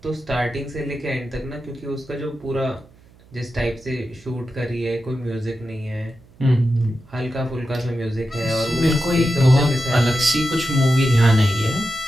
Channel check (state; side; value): noise; right; hum, 27 dB below the sound